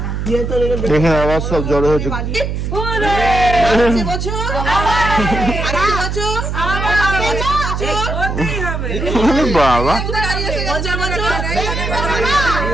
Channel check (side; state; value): right; noise; hum, 3 dB below the sound